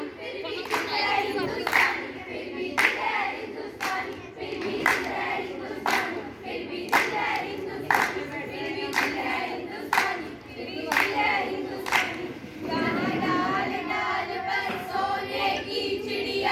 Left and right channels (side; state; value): both; identical; correlation 1.00